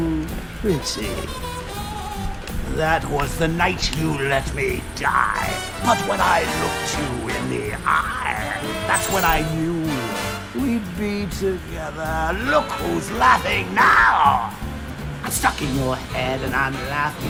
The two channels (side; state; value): both; identical; correlation 1.00